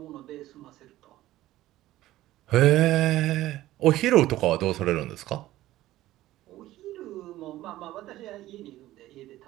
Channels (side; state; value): left; quieter; 15.4 dB